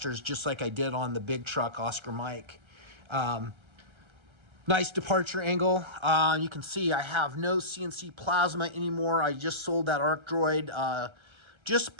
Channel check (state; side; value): late; left; 1.3 ms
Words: just like I did on the big truck Oscar Mike. Nice departure angle. You can see I have no CNC plasma anymore. I just sold that Arc Droid. Just